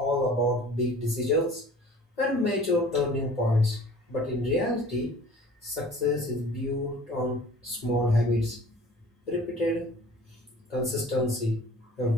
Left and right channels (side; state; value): both; normal; correlation 0.46